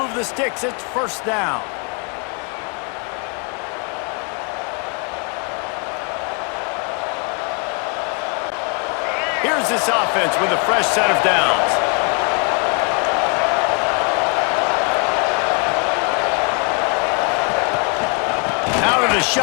the sticks. It's first down. Here's this offense with a fresh set of downs. Out of the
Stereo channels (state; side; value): quieter; right; 37.0 dB